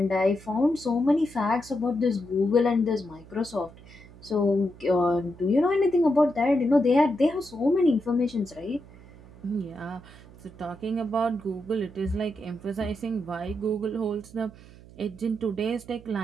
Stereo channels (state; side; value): noise; right; hum, 21 dB below the sound